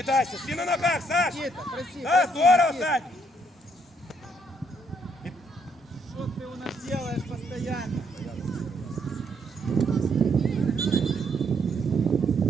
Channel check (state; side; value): normal; both; correlation 0.71